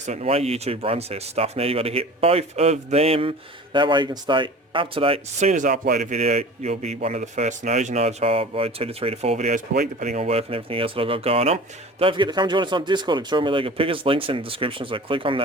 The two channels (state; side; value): normal; both; correlation 0.39